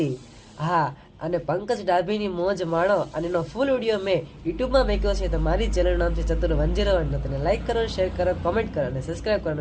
હા, અને પંકજ ડાભીની મોજ માણો. અને એનો ફૂલ વિડીયો મેં યુટ્યુબમાં મૂક્યો છે. તો મારી ચેનલ નામ છે ચતુર 101. તેને લાઈક કરો, શેર કરો, કોમેન્ટ કરો અને સબસ્ક્રાઈબ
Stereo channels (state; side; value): identical; both; correlation 1.00